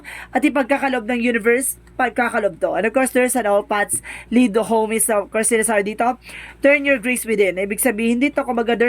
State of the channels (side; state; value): both; identical; correlation 1.00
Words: at ipagkakalob ng universe, pagkakalob to. And of course, there's an all paths lead to home is, of course, sinasabi dito, turn your grace within. Ibig sabihin dito, kumaga